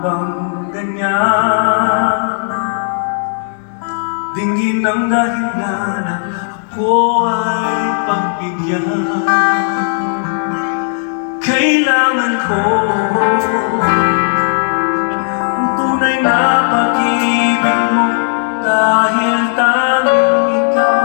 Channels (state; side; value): silent; right; digital silence